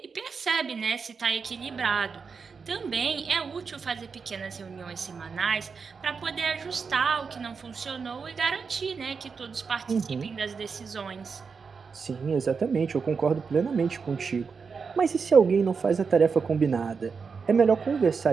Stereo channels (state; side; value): quieter; left; 5.4 dB